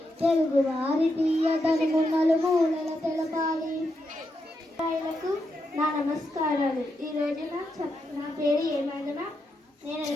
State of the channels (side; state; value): both; normal; correlation 0.83